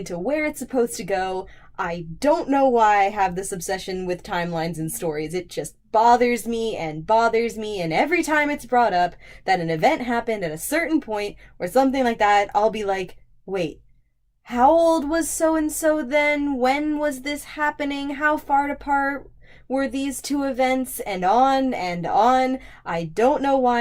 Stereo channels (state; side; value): identical; both; correlation 1.00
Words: where it's supposed to go. I don't know why I have this obsession with timelines and stories. It just bothers me, and every time it's brought up that an event happened at a certain point or something like that, I'll be like, wait, how old was so and so then? When was this happening? How far apart were these two events? And on and on. I don't know